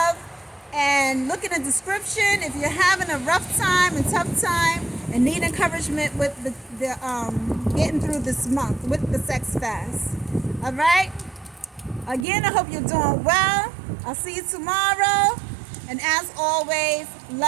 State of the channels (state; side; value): drops out; left; at 12.2 s